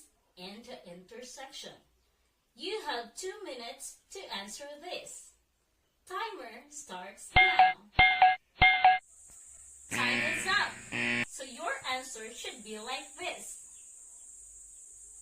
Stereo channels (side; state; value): both; identical; correlation 1.00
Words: and the intersection. You have 2 minutes to answer this. Timer starts now. Time is up. So your answer should be like this.